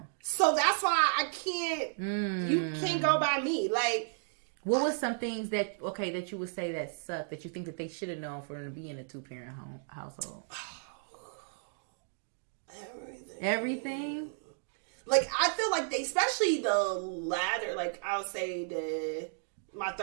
So that's why I can't. You can't go by me. Like, what was some things that you would say that sucked that you think that they should have known for them to be in a 2-parent household? Everything. Like, I feel like they, especially the latter, like, I'll say my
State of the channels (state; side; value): silent; left; digital silence